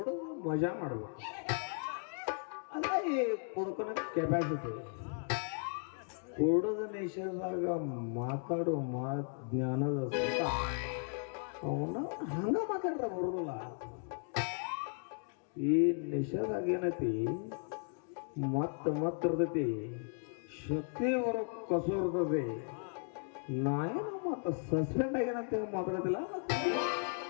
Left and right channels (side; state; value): right; silent; 54 dB below the other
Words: ಮಜಾ ಮಾಡ್ಬೇಕು. ಅಲ್ಲ ಈ ಕುಡ್ಕೊನ ಕೆಪಾಸಿಟಿ. ಕುಡದ ನಿಷೇಧಾಗ ಮಾತಾಡೋ ಜ್ಞಾನದ ಸುತ್ತ ಅವನ ಹಂಗ ಮಾತಾಡ್ರ ಬರೋದಿಲ್ಲ. ಈ ನಿಷೇಧಾಗ ಏನೈತಿ ಮತ್ತ ಇರ್ತೈತಿ, ಶಕ್ತಿ ಹೊರ ಕಸು ಇರ್ತದೆ. ನಾ ಏನು ಮತ್ತೆ ಸಸ್ಪೆಂಡ್ ಆಗ್ಯಾನಂತ ಮಾತಾಡೋದಿಲ್ಲ.